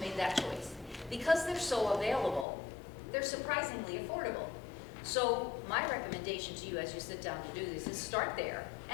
made that choice. Because they're so available, they're surprisingly affordable. So my recommendation to you as you sit down to do this is start there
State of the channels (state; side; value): drops out; right; at 2.5 s